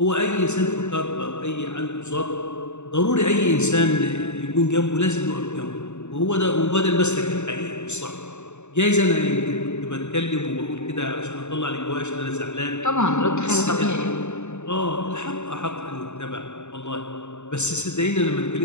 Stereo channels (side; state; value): right; late; 0.83 ms